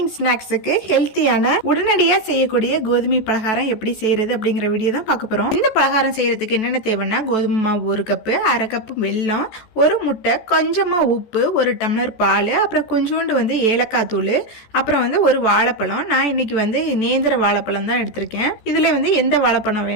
ஸ்நாக்ஸுக்கு ஹெல்த்தியான உடனடியாக செய்யக்கூடிய கோதுமை பலகாரம் எப்படி செய்யறது அப்படிங்கிற வீடியோ தான் பார்க்க போகிறோம். இந்த பலகாரம் செய்யறதுக்கு என்னென்ன தேவைன்னா, கோதுமை மாவு 1 கப்பு, 1/2 கப்பு வெல்லம், 1 முட்டை, கொஞ்சமாக உப்பு, 1 டம்ளர் பால், அப்புறம் கொஞ்சோண்டு ஏலக்காய் தூள், அப்புறம் 1 வாழைப்பழம். நான் இன்னைக்கு நேந்திர வாழைப்பழம் தான் எடுத்திருக்கேன். இதில் எந்த வாழைப்பழம்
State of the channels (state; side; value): late; right; 14 ms